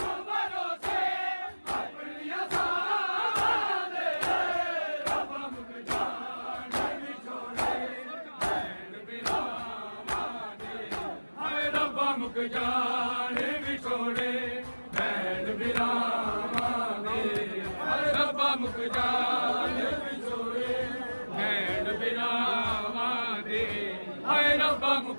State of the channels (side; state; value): both; inverted; correlation -1.00